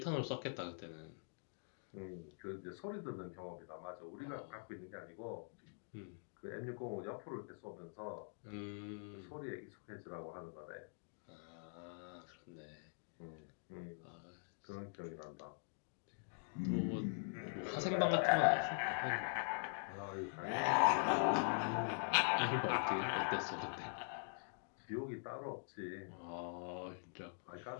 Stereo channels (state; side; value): silent; right; digital silence